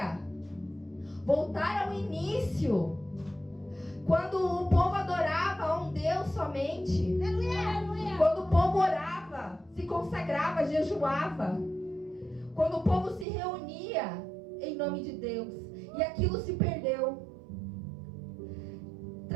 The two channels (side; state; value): left; drops out; at 13.2 s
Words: voltar ao início, quando o povo adorava a um Deus somente, quando o povo orava, se consagrava, jejuava, quando o povo se reunia em nome de Deus, e aquilo se perdeu,